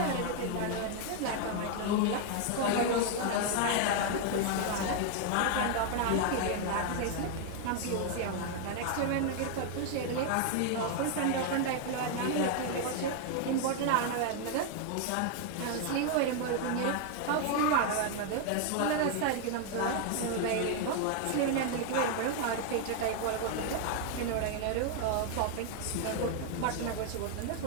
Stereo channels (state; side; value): different; both; correlation 0.00